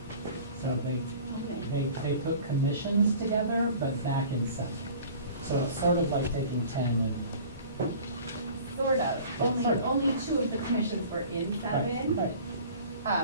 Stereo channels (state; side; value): inverted; both; correlation -0.45